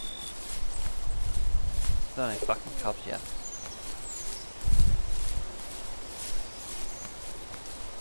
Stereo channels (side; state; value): both; inverted; correlation -1.00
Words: There's no fucking cubs yet.